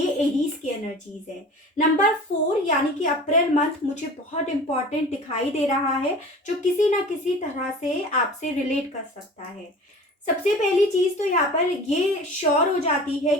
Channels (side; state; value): both; normal; correlation 0.40